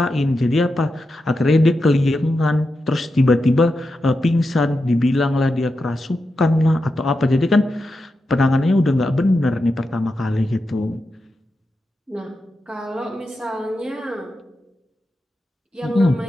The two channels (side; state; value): both; normal; correlation 0.89